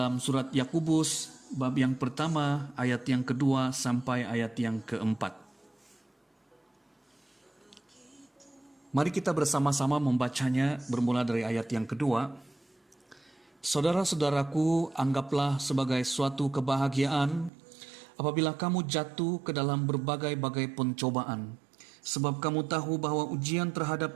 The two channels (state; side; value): drops out; left; at 17.5 s